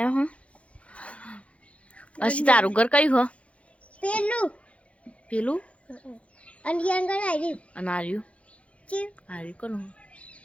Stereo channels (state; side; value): late; right; 0.063 ms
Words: હો અસી તારું ઘર કયું હો પેલું પેલું અને આગળ આવી અને આર્યું છે આર્યું કોનું